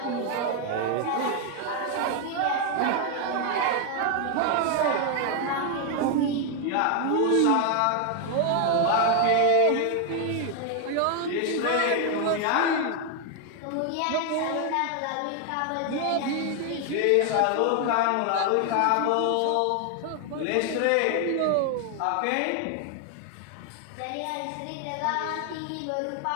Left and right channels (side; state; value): both; different; correlation 0.01